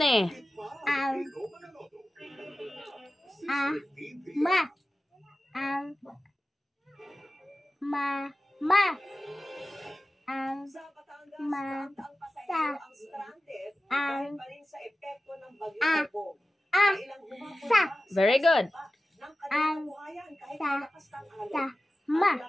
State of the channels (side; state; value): both; normal; correlation 0.95